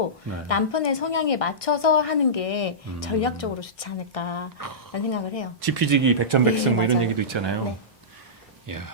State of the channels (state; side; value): normal; both; correlation -0.18